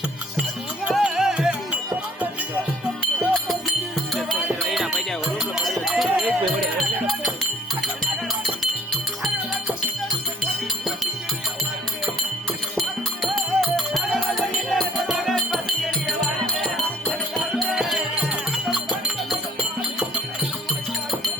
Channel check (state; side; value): normal; both; correlation 0.56